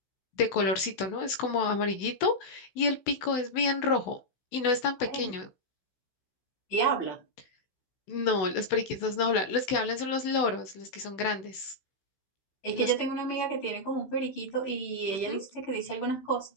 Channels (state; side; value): late; right; 16 ms